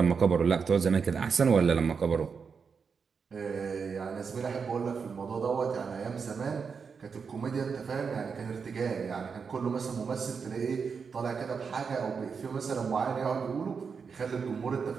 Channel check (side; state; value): left; quieter; 5.8 dB